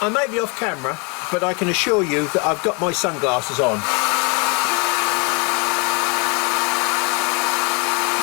I may be off camera, but I can assure you that I've got my sunglasses on.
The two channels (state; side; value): quieter; right; 32.3 dB